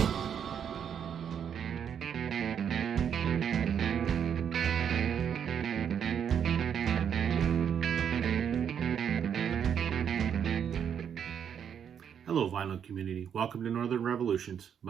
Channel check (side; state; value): left; quieter; 8.2 dB